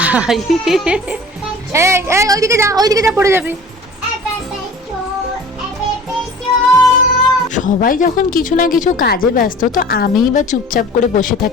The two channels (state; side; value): normal; both; correlation 0.43